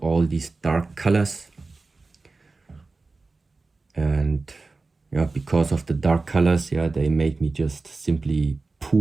all these dark colors. And because of the dark colors, they made me just simply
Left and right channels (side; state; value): left; quieter; 3.7 dB